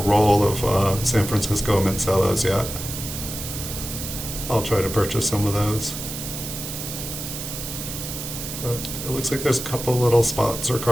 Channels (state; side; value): noise; right; hiss, 7 dB below the sound